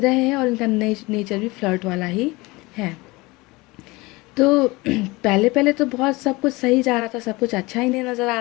हैं, और इनका नेचर भी फ्लर्ट वाला ही है। तो पहले पहले तो बहुत सब कुछ सही जा रहा था, सब कुछ अच्छा ही नहीं नज़र आ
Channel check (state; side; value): quieter; right; 22.9 dB